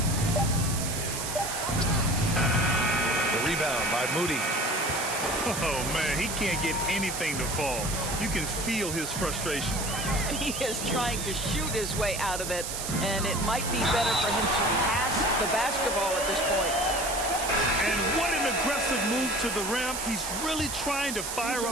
The rebound by Moody. Oh, man, he can't get anything to fall. You can feel his frustration. He is trying to shoot his way out of it, and it might be better for him to pass the basketball at this point. And what an aggressive move to the rim. He's really trying to fire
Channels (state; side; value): noise; right; hiss, 5 dB below the sound